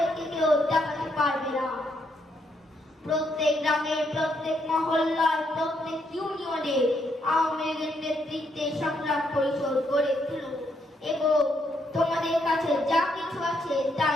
কেউ দাবাতে পারবে না। প্রত্যেক গ্রামে, প্রত্যেক মহল্লায়, প্রত্যেক ইউনিয়নে আওয়ামী লীগের নেতৃত্বে সংগ্রাম পরিষদ গড়ে তুলো এবং তোমাদের কাছে যা কিছু আছে তা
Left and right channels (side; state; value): both; normal; correlation 0.75